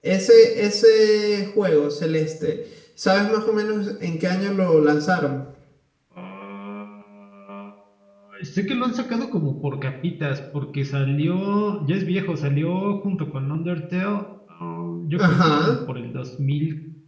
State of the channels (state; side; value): identical; both; correlation 1.00